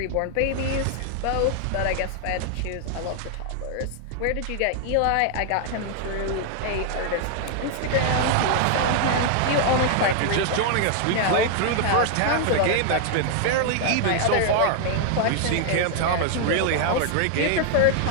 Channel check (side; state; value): both; different; correlation 0.00